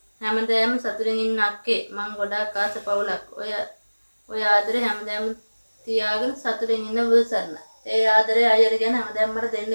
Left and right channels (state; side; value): inverted; both; correlation -1.00